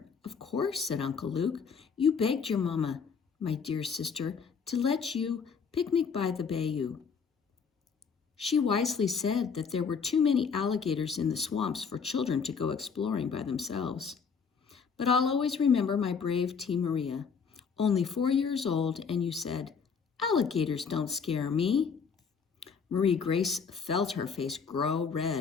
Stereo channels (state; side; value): quieter; right; 5.9 dB